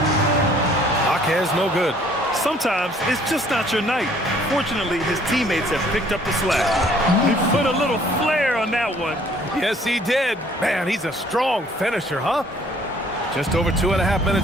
Jaquez no good. Sometimes it's just not your night. Fortunately, his teammates have picked up the slack. He put a little flair on that one. Yes, he did. Man, he's a strong finisher, huh? Just over 2.5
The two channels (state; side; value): normal; both; correlation 0.59